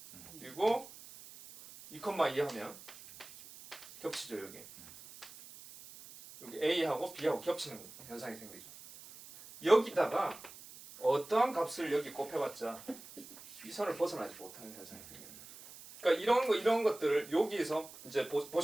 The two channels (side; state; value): right; noise; hiss, 17 dB below the sound